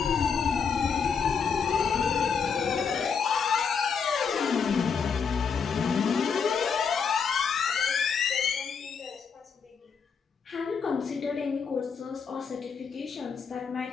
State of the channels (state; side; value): quieter; right; 6.1 dB